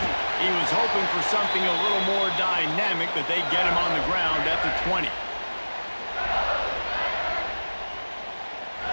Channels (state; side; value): inverted; both; correlation -1.00